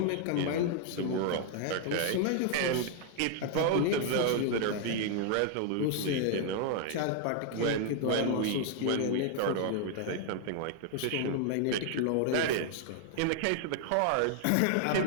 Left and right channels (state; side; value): different; both; correlation 0.00